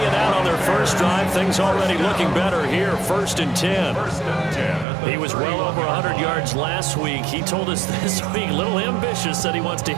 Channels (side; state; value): left; drops out; at 4.9 s